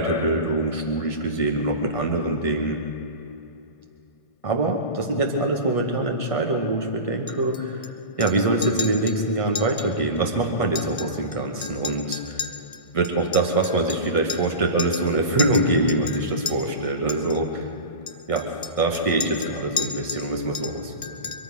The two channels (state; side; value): late; right; 1.5 ms